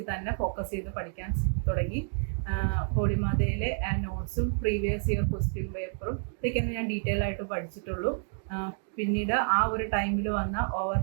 തന്നെ ഫോക്കസ് ചെയ്ത് പഠിക്കാൻ തുടങ്ങി. ഹോളിമാതയിലെ നോട്ട്സും പ്രീവിയസ് ഇയർ ക്വസ്റ്റ്യൻ പേപ്പറും ഇതൊക്കെയാണ് ഞാൻ ഡീറ്റെയിൽ ആയിട്ട് പഠിച്ചിട്ടുള്ളൂ. പിന്നീട് ആ ഒരു ടൈമിൽ വന്ന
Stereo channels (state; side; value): silent; left; 56 dB below the other